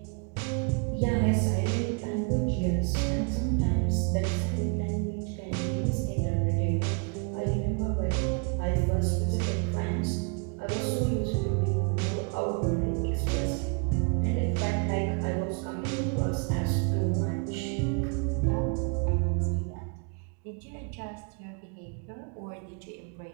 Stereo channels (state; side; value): quieter; left; 36.8 dB